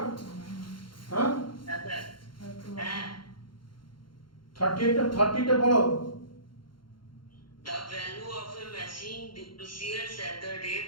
হ্যাঁ, হ্যাঁ স্যার। হ্যাঁ। 30টা পড়ো। The value of a machine depreciates at the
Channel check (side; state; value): right; late; 0.73 ms